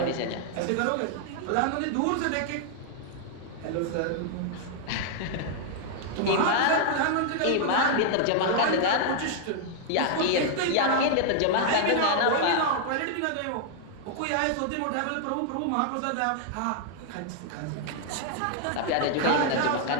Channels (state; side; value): different; both; correlation 0.00